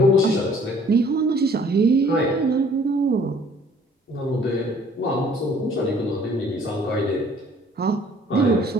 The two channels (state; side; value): normal; both; correlation 0.56